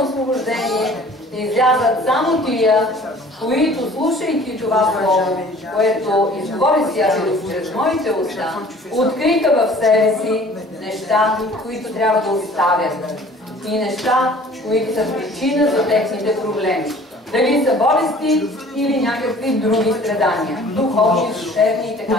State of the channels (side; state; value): both; normal; correlation 0.50